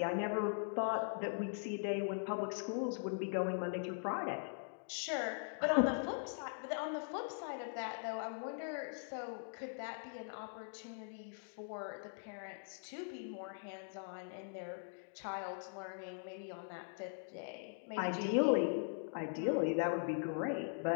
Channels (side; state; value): right; silent; digital silence